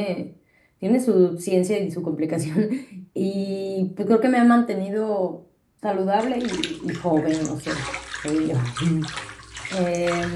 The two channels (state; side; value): identical; both; correlation 1.00